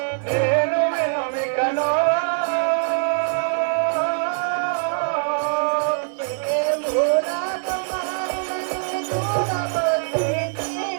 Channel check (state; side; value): silent; left; 64 dB below the other